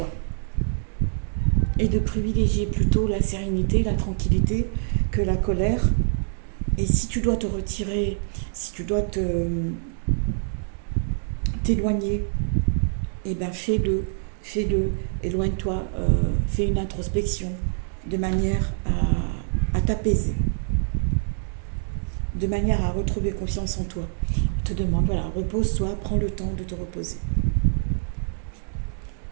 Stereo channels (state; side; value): silent; left; digital silence